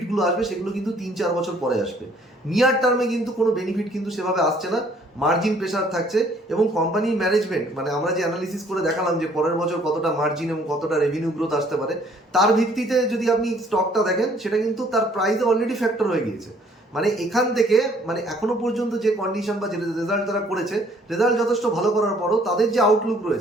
আসবে সেগুলো কিন্তু 3-4 বছর পরে আসবে। নিয়ার টার্মে কিন্তু কোনো বেনিফিট কিন্তু সেভাবে আসছে না, মার্জিন প্রেশার থাকছে। এবং কোম্পানির ম্যানেজমেন্ট, মানে আমরা যে অ্যানালিসিস করে দেখালাম যে পরের বছর কতটা মার্জিন এবং কতটা রেভিনিউ গ্রোথ আসতে পারে, তার ভিত্তিতে যদি আপনি স্টকটা দেখেন সেটা কিন্তু তার প্রাইসে অলরেডি ফ্যাক্টর হয়ে গিয়েছে। মানে এখান থেকে মানে এখনো পর্যন্ত যে কন্ডিশন বা যে রেজাল্ট তারা করেছে, রেজাল্ট যথেষ্ট ভালো করার পরও তাদের যে আউটলুক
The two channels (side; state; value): both; normal; correlation 0.60